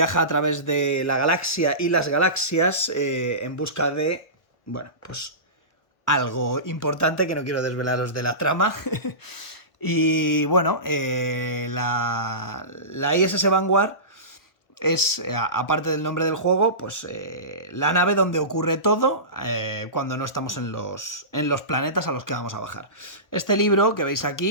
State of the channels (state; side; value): late; right; 1.1 ms